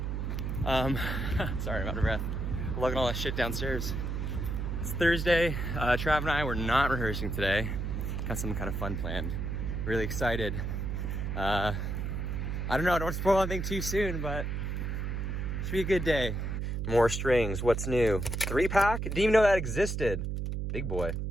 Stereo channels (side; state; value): right; noise; hum, 2 dB below the sound